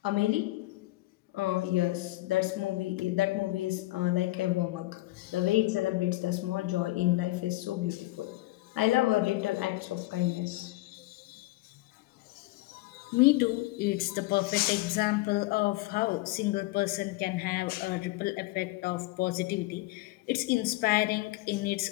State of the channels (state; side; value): quieter; right; 19.1 dB